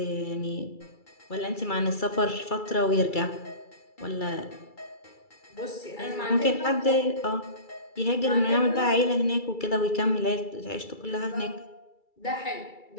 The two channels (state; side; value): late; right; 2.3 ms